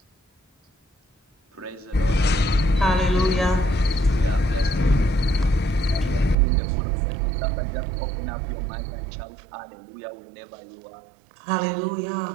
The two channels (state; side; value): drops out; left; at 6.4 s